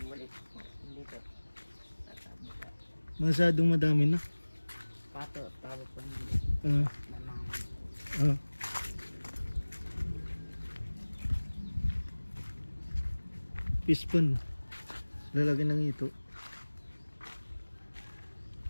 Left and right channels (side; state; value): both; inverted; correlation -1.00